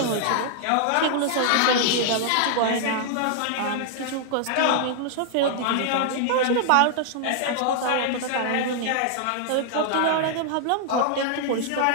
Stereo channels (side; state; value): both; different; correlation -0.01